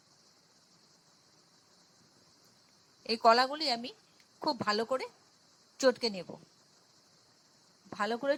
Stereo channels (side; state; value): both; identical; correlation 1.00